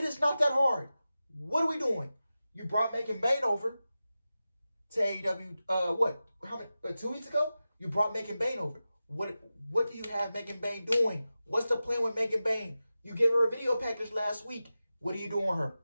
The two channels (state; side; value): inverted; both; correlation -0.94